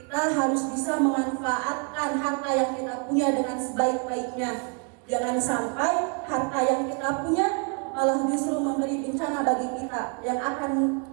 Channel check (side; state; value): left; quieter; 37.9 dB